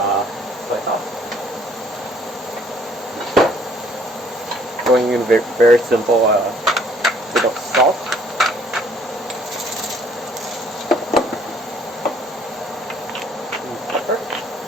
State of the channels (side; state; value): both; normal; correlation 0.61